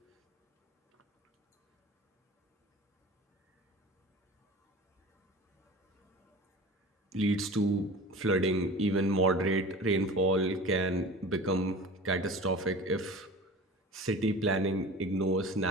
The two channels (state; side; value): normal; both; correlation 0.37